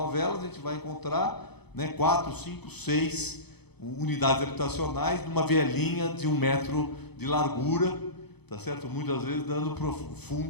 a gente vai encontrar, né, 4, 5, 6 unidades habitacionais numa vielinha de 1 metro de largura, tá certo? Muitas vezes dando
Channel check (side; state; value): right; late; 0.98 ms